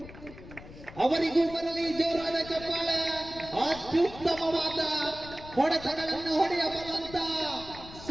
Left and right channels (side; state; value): left; noise; rumble, 16 dB below the sound